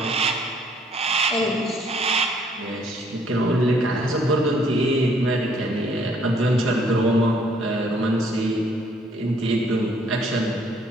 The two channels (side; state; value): both; normal; correlation 0.64